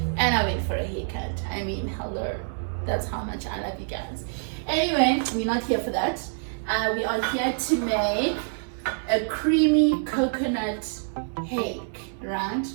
And I went for a haircut. I mean, hello. That's how much I love you guys. Anyway, we're not here for that. We are here to make a creamy coconut hake, right?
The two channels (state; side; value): silent; left; digital silence